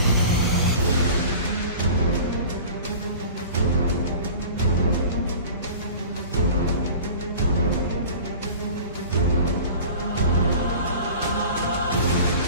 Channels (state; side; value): inverted; both; correlation -0.40